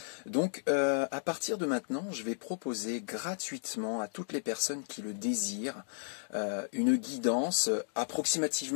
Donc à partir de maintenant, je vais proposer gratuitement à toutes les personnes qui le désirent une guidance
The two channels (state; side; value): silent; right; digital silence